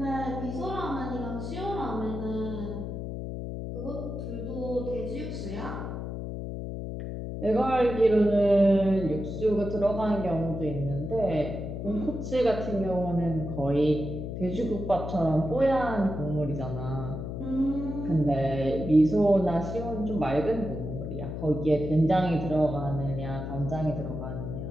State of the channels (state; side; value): noise; left; hum, 6 dB below the sound